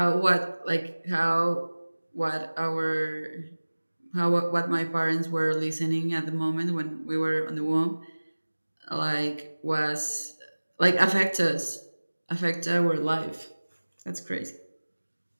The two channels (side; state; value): both; inverted; correlation -1.00